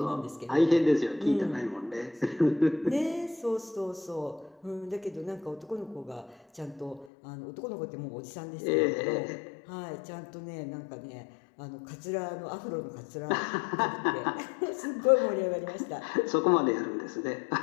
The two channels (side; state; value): right; drops out; at 7.1 s